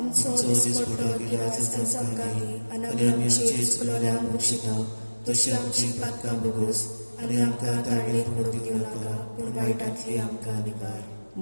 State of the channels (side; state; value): both; inverted; correlation -1.00